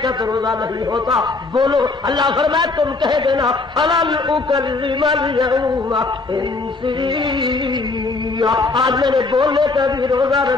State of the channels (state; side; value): quieter; right; 3.7 dB